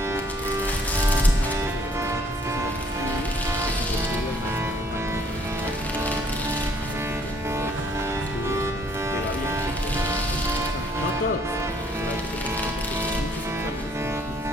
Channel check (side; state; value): both; normal; correlation 0.63